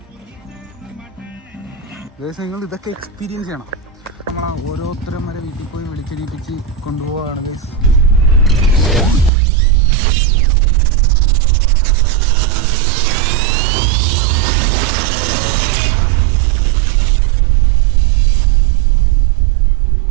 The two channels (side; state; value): left; drops out; at 9.3 s